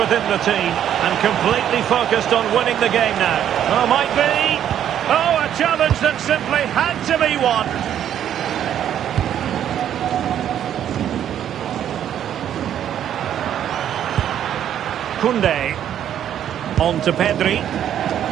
the team and completely focused on winning the game now. Oh, might be. Oh, a challenge that simply had to be won. Koundé. On to Pedri.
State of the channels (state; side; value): quieter; left; 10.2 dB